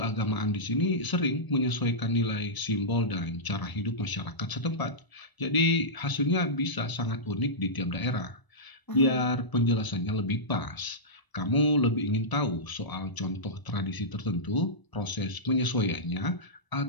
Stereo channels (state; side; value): late; right; 1.0 ms